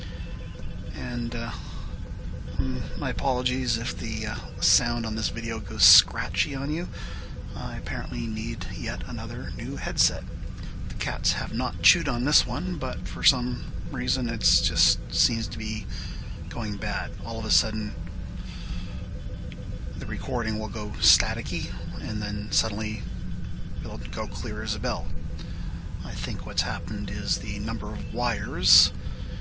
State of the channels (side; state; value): both; identical; correlation 1.00